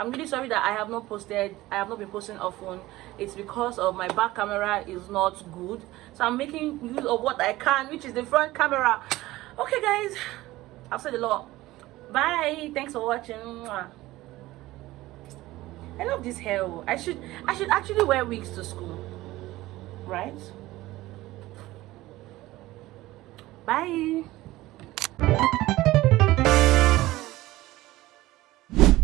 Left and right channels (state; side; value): quieter; left; 17.7 dB